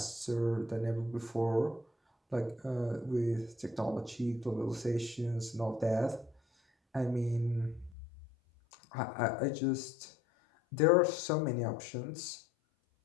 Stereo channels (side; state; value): right; drops out; at 8.0 s